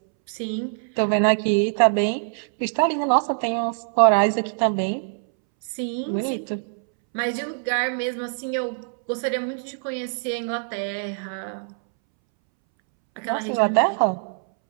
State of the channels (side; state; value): left; silent; 63 dB below the other